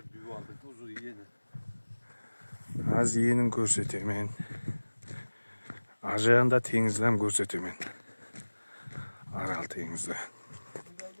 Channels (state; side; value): inverted; both; correlation -1.00